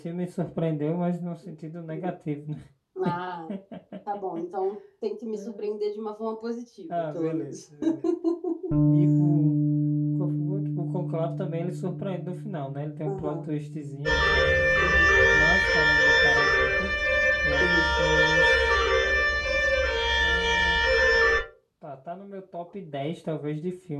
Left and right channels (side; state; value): both; identical; correlation 1.00